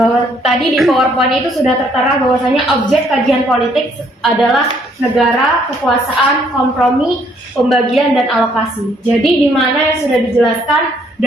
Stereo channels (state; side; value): normal; both; correlation 0.66